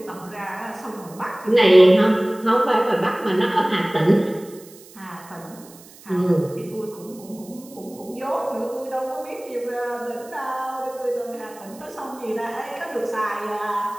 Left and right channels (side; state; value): right; noise; hiss, 22 dB below the sound